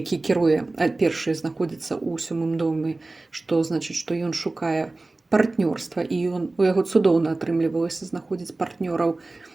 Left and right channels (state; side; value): quieter; left; 3.1 dB